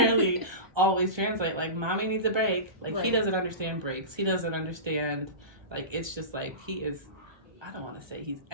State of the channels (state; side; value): late; left; 1.2 ms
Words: always translate. Like, mommy needs a break. Like, he Right. doesn't understand breaks. He doesn't understand, like, it's just like, he is, I don't want to say he's